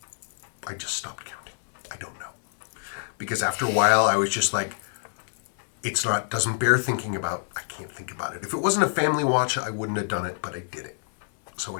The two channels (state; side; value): silent; right; 60 dB below the other